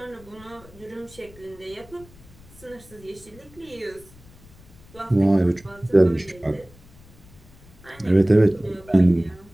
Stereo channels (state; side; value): noise; left; rumble, 23 dB below the sound